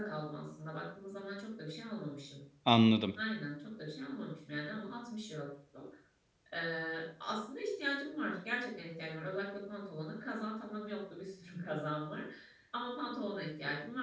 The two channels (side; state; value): both; identical; correlation 1.00